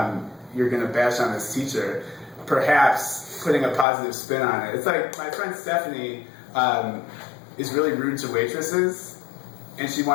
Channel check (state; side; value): drops out; right; at 3.9 s